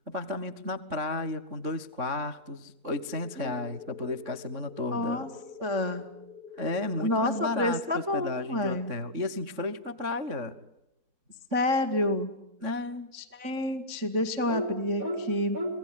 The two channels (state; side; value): late; left; 3.6 ms